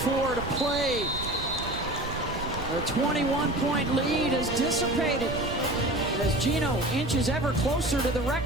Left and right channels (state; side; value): noise; right; rumble, 9 dB below the sound